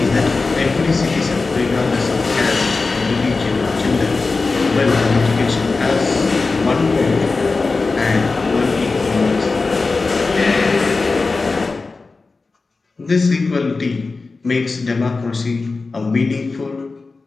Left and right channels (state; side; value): quieter; right; 3.9 dB